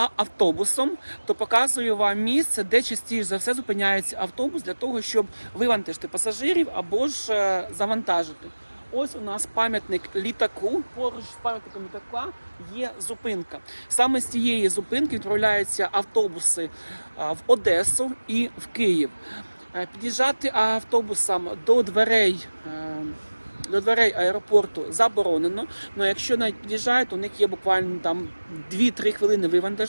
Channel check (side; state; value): both; inverted; correlation -1.00